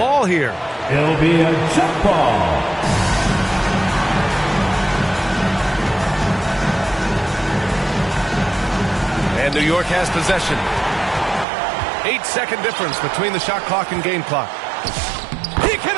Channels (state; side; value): drops out; left; at 11.5 s